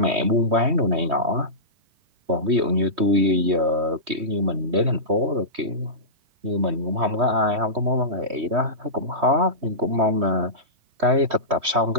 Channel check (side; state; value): left; late; 3.2 ms